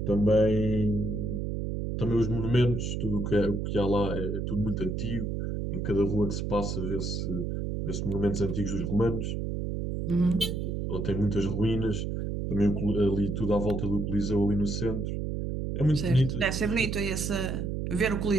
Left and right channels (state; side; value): noise; right; hum, 2 dB below the sound